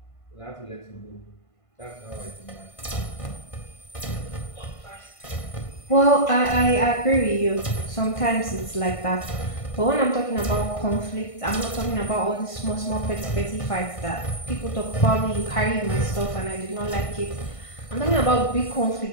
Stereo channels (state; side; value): late; right; 1.5 ms